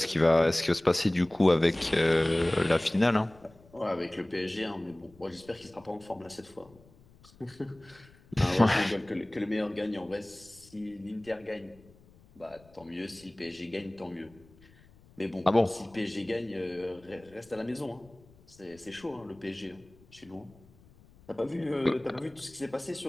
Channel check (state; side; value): noise; left; rumble, 26 dB below the sound